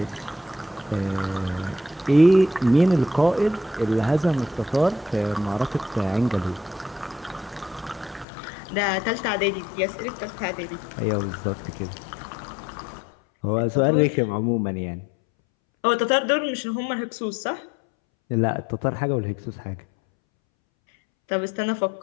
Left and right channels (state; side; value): drops out; right; at 8.2 s